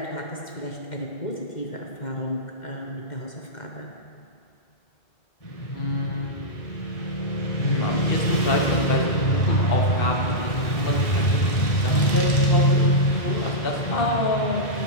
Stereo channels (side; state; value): right; late; 1.7 ms